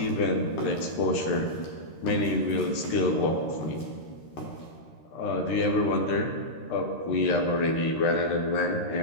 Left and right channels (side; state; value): right; late; 13 ms